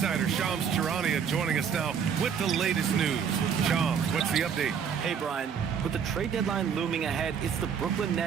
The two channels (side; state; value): left; quieter; 7.2 dB